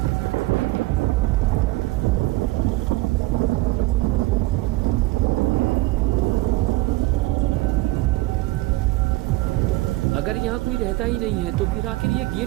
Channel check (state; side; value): quieter; left; 19.5 dB